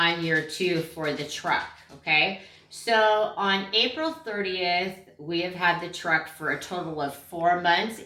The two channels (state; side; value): identical; both; correlation 1.00